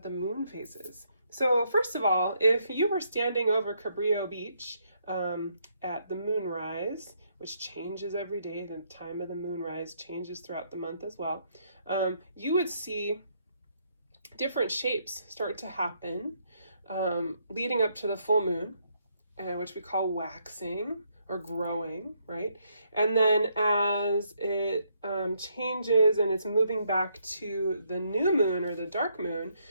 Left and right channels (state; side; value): inverted; both; correlation -0.73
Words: the moon phases. So first of all, if you were standing over Cabrillo Beach at the moonrise, which changes every day, the time of the moonrise changes throughout the month as well, you would see different shapes start to happen leading up to the full moon, which we call waxing or growing, right? And then as it changes and it's moving back to the new moon or the dark moon,